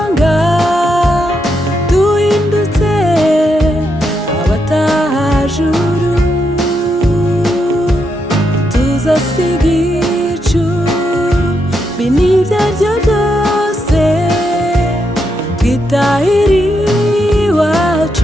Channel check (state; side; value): normal; both; correlation 0.81